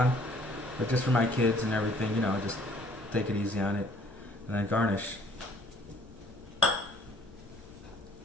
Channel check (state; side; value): noise; left; rumble, 20 dB below the sound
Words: But just for my kids and everything, you know, just take it easy on it. And then garnish.